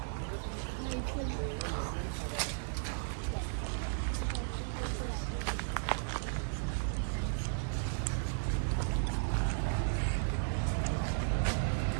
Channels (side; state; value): left; silent; digital silence